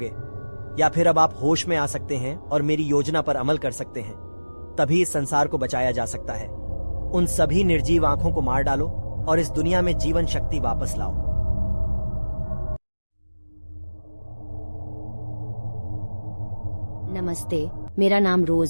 या फिर अब आप होश में आ सकते हैं और मेरी योजना पर अमल कर सकते हैं। तभी इस संसार को बचाया जा सकता है। उन सभी निर्जीव आंखों को मार डालो और इस दुनिया में जीवन शक्ति वापस लाओ। नमस्ते, मेरा नाम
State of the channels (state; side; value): inverted; both; correlation -1.00